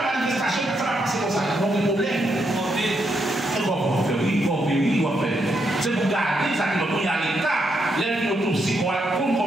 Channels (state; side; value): normal; both; correlation 0.80